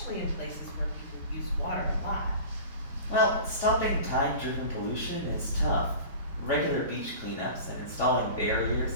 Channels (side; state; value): both; inverted; correlation -0.37